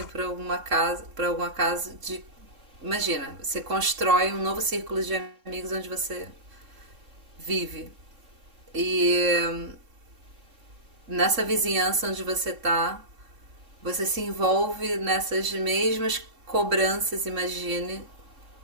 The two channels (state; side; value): late; left; 3.7 ms